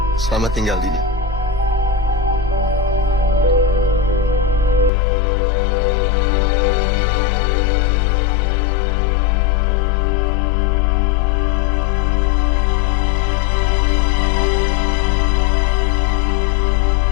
Selamat tinggal, Dini.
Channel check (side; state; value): right; drops out; at 4.9 s